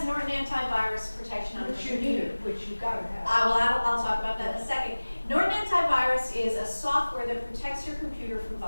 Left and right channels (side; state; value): both; inverted; correlation -1.00